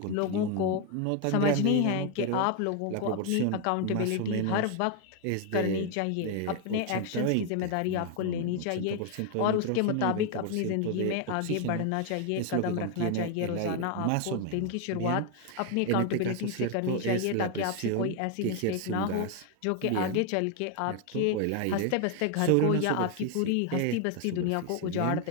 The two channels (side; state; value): both; different; correlation 0.01